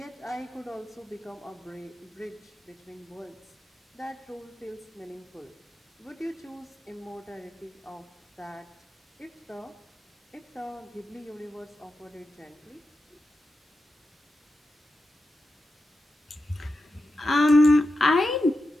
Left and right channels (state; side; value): normal; both; correlation 0.90